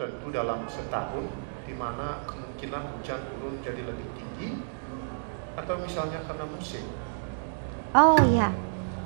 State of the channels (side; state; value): left; silent; digital silence